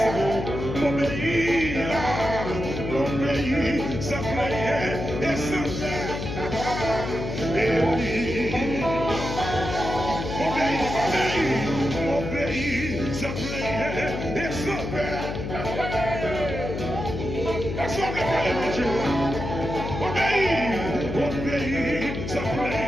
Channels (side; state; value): left; noise; hum, 5 dB below the sound